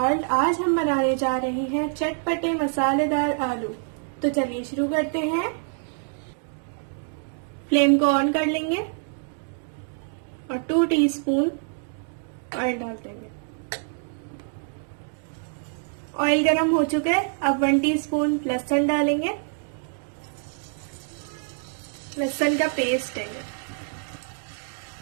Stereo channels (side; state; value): left; silent; 61 dB below the other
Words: आज हम बनाने जा रहे हैं चटपटे मसालेदार आलू। तो चलिए शुरू करते हैं। फ्लेम को ऑन कर लेंगे और 2 टीस्पून ऑयल डाल देंगे। ऑयल गरम हो चुका है। अब 1 टीस्पून लहसुन डालेंगे। लहसुन का पेस्ट है।